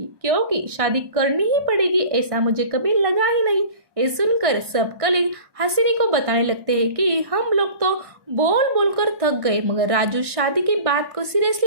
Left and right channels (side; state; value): left; late; 1.6 ms